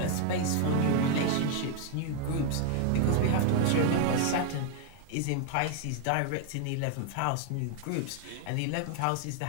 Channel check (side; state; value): both; different; correlation 0.00